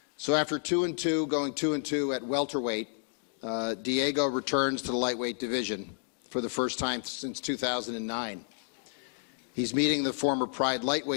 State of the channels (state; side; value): silent; right; digital silence